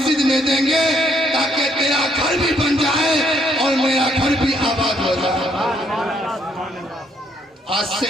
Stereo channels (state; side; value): normal; both; correlation 0.70